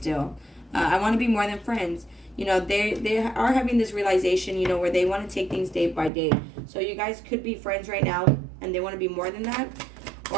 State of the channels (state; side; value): drops out; left; at 6.1 s